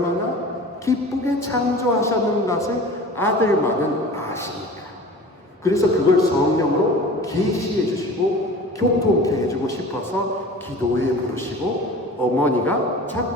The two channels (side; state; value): both; normal; correlation 0.40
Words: 기쁘게 창조하셨는 것을 아들만은 아시니까. 그래서 그걸 성령으로 계시해 주시고 교통케 해주고 싶어서 기도에 부르시고 어머니가